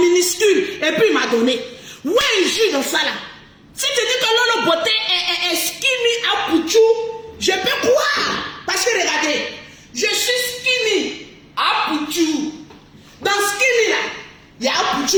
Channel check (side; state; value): both; identical; correlation 1.00